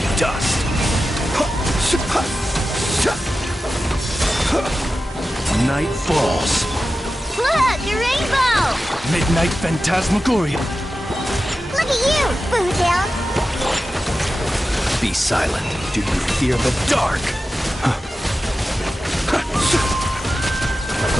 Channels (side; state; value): both; normal; correlation 0.93